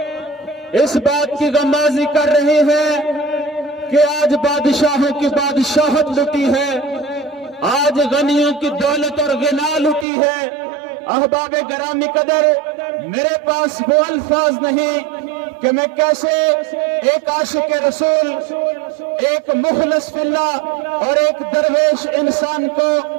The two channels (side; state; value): left; drops out; at 10.1 s